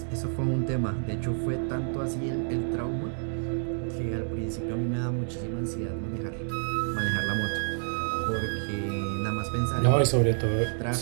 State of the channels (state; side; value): silent; left; digital silence